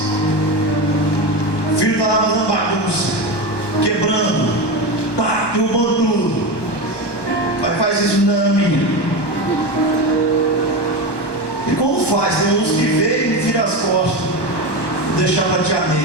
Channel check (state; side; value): late; right; 1.2 ms